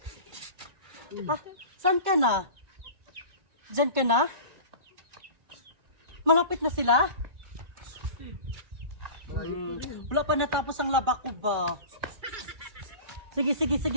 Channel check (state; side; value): late; left; 2.3 ms